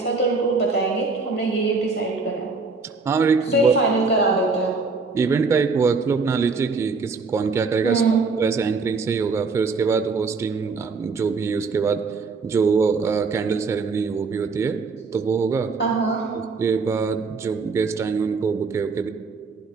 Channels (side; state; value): left; quieter; 4.4 dB